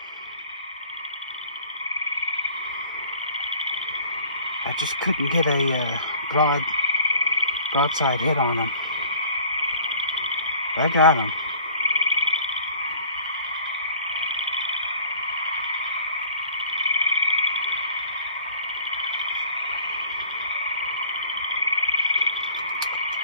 I just couldn't get a broadside hit on him. I got him.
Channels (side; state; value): both; inverted; correlation -0.50